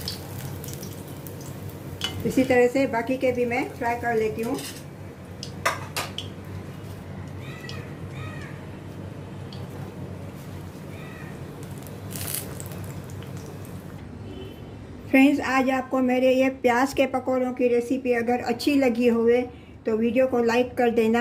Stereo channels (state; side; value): identical; both; correlation 1.00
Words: इसी तरह से बाकी के भी मैं फ्राई कर लेती हूँ। फ्रेंड्स, आज आपको मेरे ये प्याज के पकौड़ों की रेसिपी अगर अच्छी लगी होवे तो वीडियो को लाइक कर